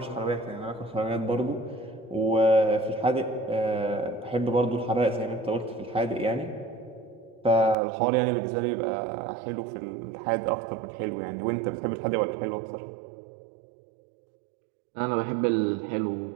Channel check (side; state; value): left; drops out; at 7.8 s